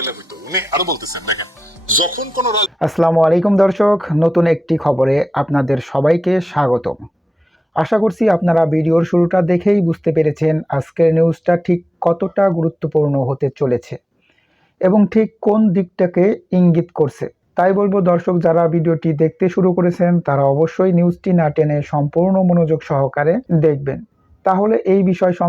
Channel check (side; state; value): both; normal; correlation 0.95